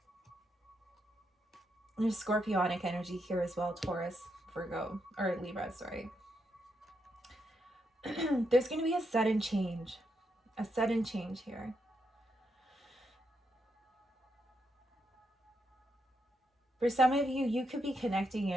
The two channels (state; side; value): normal; both; correlation 0.81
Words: There's Scorpionic energy here as well, Taurus, Virgo, or Libra, sorry. There's going to be a sudden change here. For some of you, you could be connecting